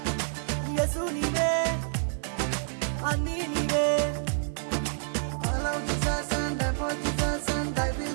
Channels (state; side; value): silent; left; 59 dB below the other